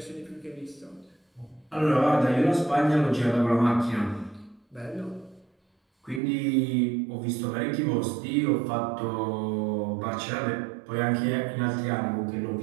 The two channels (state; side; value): drops out; left; at 6.2 s